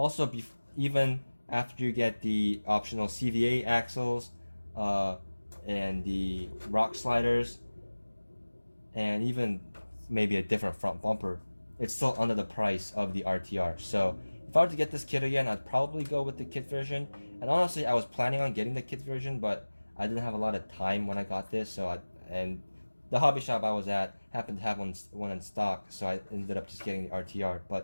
even after you get the optional CVA axles and the rock sliders, and even maybe a different front bumper, it's still under the price of the RTR. So if I were to get this kit again, I'd probably go with the kit version. And honestly, I was planning on getting the kit version, but I didn't have a lot of time when I got this. And the hobby shop I was at happened to have one in stock, so I ended up just getting the RTR.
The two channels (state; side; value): inverted; both; correlation -1.00